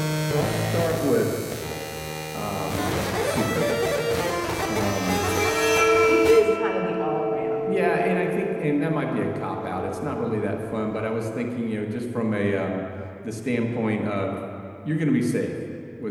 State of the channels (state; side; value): identical; both; correlation 1.00